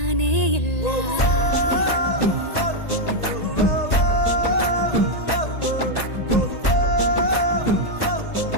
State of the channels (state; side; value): late; right; 1.9 ms